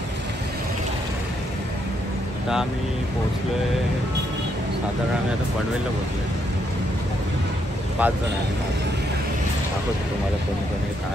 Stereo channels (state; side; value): normal; both; correlation 0.76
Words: आता आम्ही पोहोचलो आहे, साधारण आम्ही आता पनवेलला पोहोचलो आहे. 5 जण आहे. दाखवतो तुम्हाला कोणी कोणी